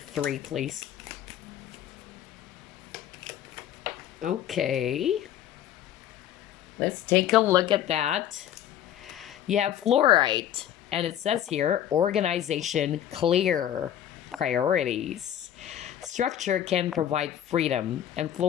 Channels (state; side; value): quieter; right; 10.9 dB